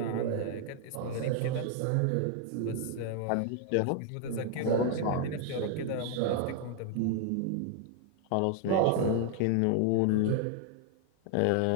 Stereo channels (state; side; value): different; both; correlation 0.00